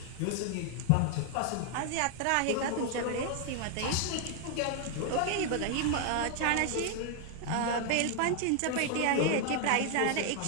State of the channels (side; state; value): both; different; correlation 0.00